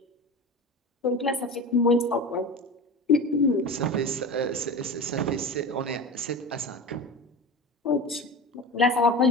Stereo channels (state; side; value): normal; both; correlation 0.30